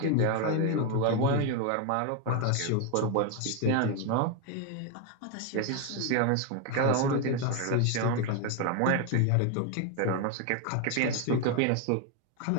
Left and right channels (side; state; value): both; different; correlation 0.01